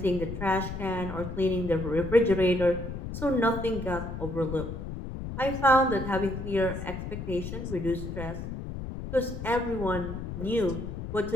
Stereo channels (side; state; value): left; noise; rumble, 7 dB below the sound